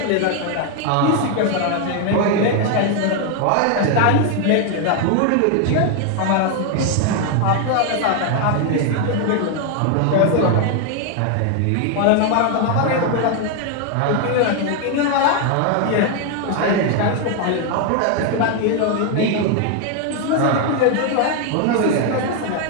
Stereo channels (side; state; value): both; different; correlation 0.01